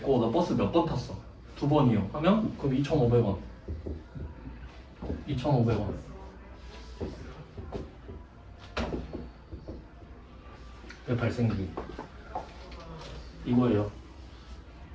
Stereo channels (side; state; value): both; identical; correlation 1.00